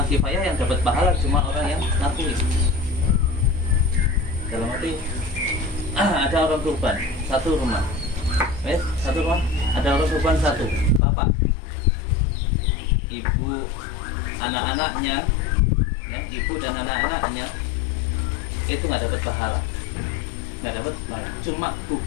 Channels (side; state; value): right; drops out; at 11.0 s